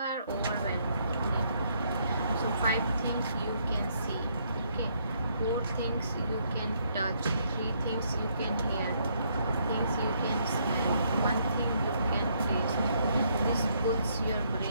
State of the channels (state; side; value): inverted; both; correlation -0.71